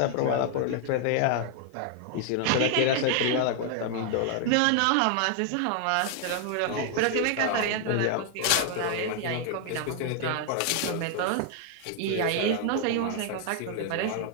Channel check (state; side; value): different; both; correlation 0.00